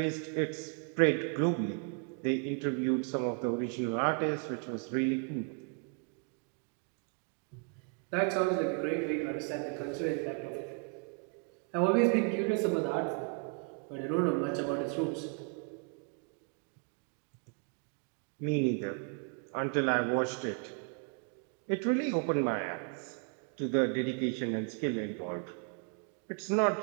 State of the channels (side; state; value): left; quieter; 36.7 dB